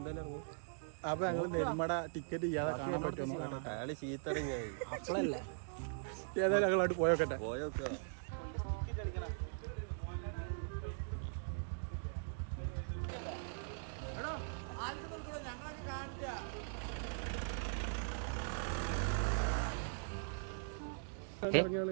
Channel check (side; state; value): left; silent; digital silence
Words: അപ്പൊ ഞങ്ങള് നെരുമട ടിക്കറ്റ് ചെയ്യാതെ കാണാൻ പറ്റുമോ അപ്പളല്ലേ ഏതായാലും ഞങ്ങളോട്ട് പോയോക്കട്ടെ.